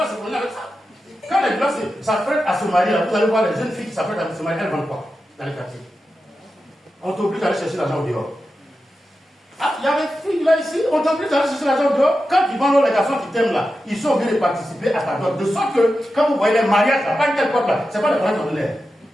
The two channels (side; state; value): both; normal; correlation 0.91